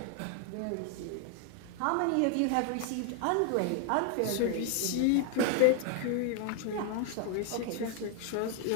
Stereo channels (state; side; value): different; both; correlation 0.00